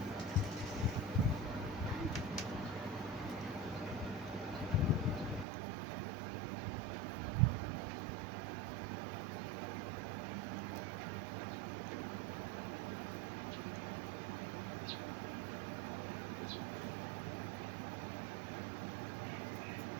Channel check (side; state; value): left; drops out; at 5.5 s